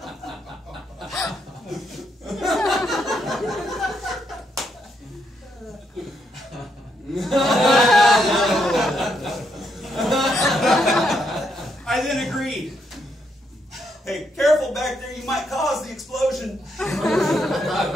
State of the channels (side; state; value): both; normal; correlation 0.77